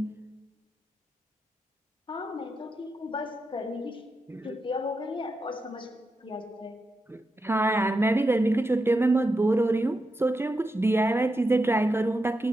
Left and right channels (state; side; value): normal; both; correlation 0.87